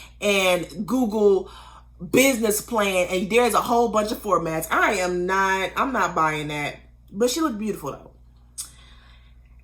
and Google business plan and there's a whole bunch of formats. I'm not buying that. But she looked beautiful though.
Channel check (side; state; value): both; identical; correlation 1.00